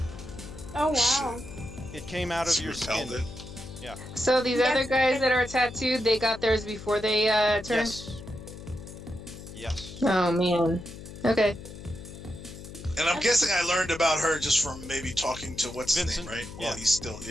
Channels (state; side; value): noise; left; hum, 13 dB below the sound